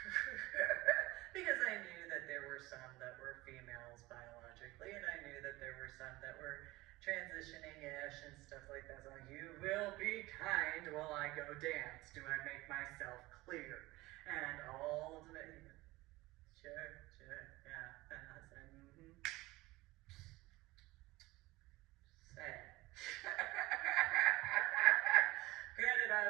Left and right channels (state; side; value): quieter; left; 19.9 dB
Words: Because I knew that there were some that were females biologically, and I knew that there were some that were transitioning-ish and stuff like that. So you will be kind while I go dance. Do I make myself clear? And all of it, sure, yeah. And I said, Say. Granted,